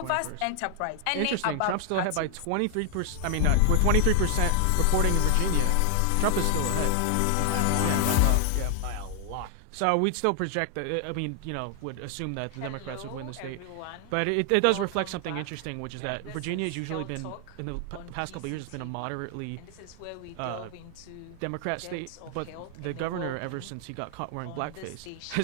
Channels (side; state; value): both; different; correlation 0.00